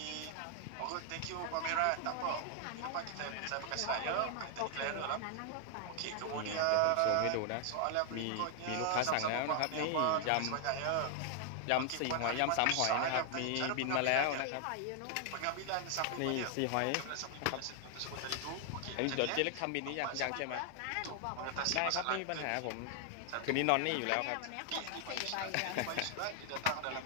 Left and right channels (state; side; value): different; both; correlation 0.00